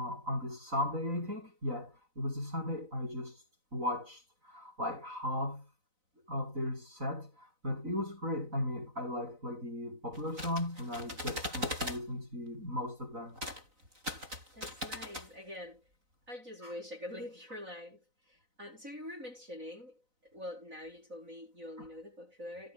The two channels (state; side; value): late; left; 4.0 ms